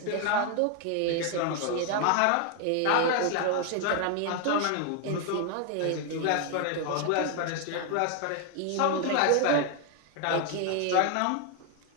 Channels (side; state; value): both; different; correlation 0.01